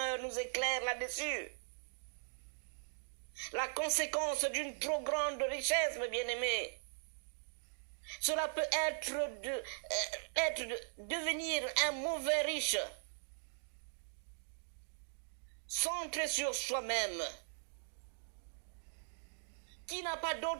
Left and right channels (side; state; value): left; silent; digital silence